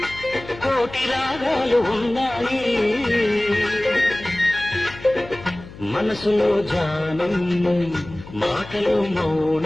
కోటి రాగాలు ఉన్నాయి మనసులో ధ్యానం మాటలో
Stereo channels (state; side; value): noise; left; hum, 17 dB below the sound